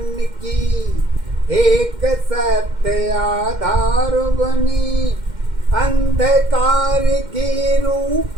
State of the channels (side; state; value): left; late; 2.1 ms